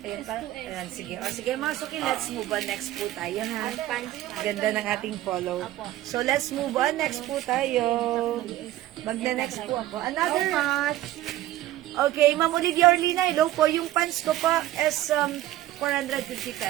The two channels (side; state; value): left; quieter; 14.8 dB